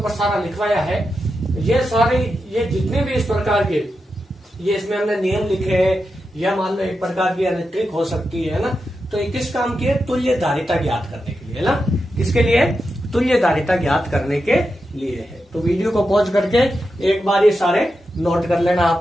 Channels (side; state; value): both; normal; correlation 0.88